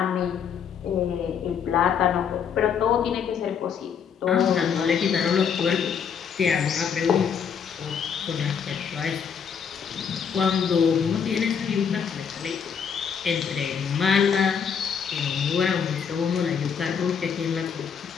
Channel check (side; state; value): right; quieter; 7.1 dB